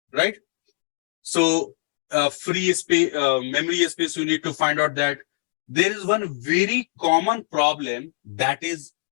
Right? So free space, memory space, you need to find out that. There is one very common problem, that is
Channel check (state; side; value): quieter; right; 29.6 dB